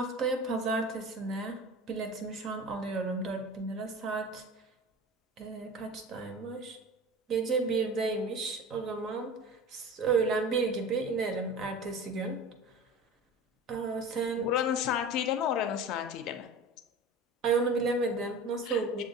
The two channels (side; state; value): both; normal; correlation 0.36